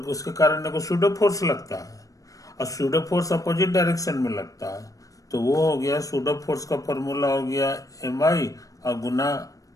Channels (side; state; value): right; late; 0.16 ms